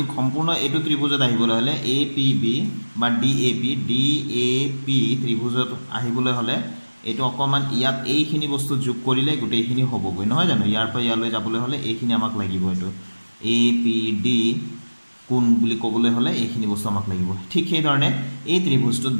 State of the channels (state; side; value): inverted; both; correlation -1.00